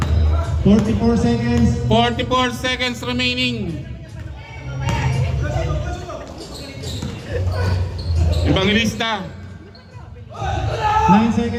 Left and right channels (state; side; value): identical; both; correlation 1.00